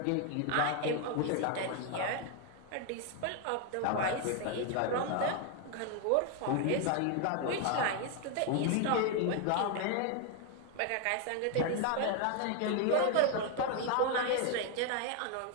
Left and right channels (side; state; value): both; different; correlation 0.01